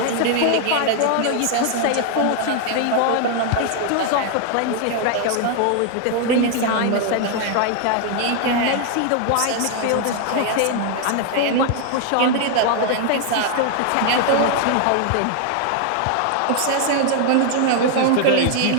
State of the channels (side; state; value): both; different; correlation 0.00